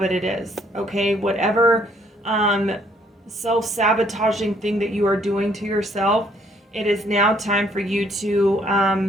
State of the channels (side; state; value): both; normal; correlation 0.65